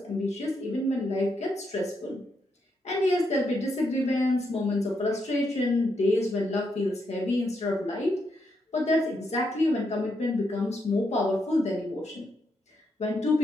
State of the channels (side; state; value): both; normal; correlation 0.80